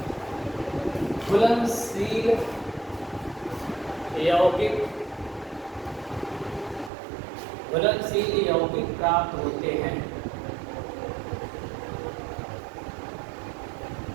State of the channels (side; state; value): left; drops out; at 6.9 s